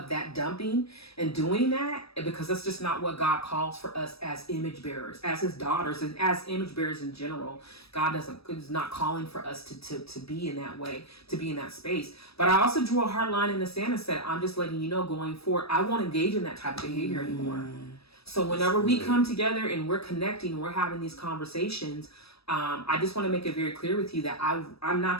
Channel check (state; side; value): late; right; 0.78 ms